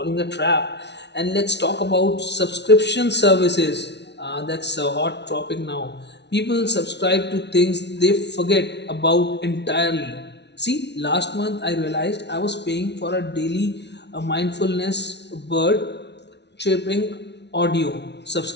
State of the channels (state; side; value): late; right; 0.50 ms